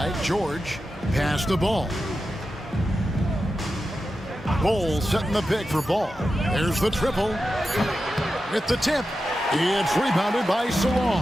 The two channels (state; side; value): normal; both; correlation 0.91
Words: George. Pass the Ball. Ball setting the pick for Ball. There's the triple. With the tip. It's rebounded by